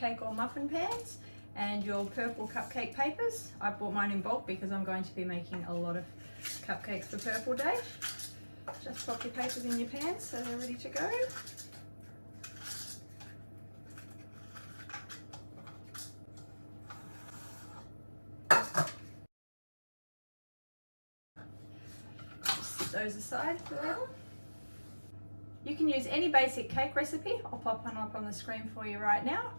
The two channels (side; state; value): both; inverted; correlation -1.00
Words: or muffin pans and your purple cupcake papers. I bought mine in bulk because I'm going to be making a lot of cupcakes for Purple Day. Just pop your papers in your pans so they're ready to go. Those aside for now. You can use any basic cake recipe. I'll pop one up on the screen for you right now.